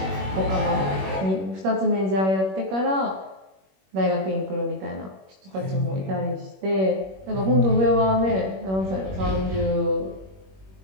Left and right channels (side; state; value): left; late; 21 ms